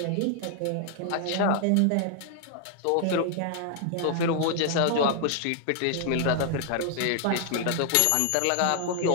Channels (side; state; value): both; different; correlation 0.00